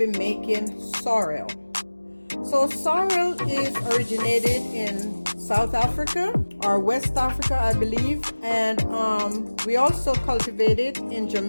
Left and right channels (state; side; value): inverted; both; correlation -1.00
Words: making sorrel. So sorrel is originated in South Africa or West Africa, I believe, and we also cultivate it in